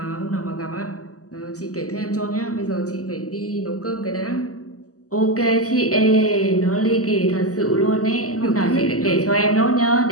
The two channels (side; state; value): right; late; 0.66 ms